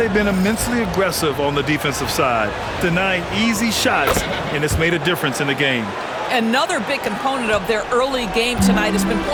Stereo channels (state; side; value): identical; both; correlation 1.00